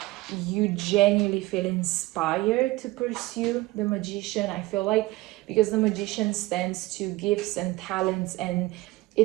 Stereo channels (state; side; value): quieter; left; 19.7 dB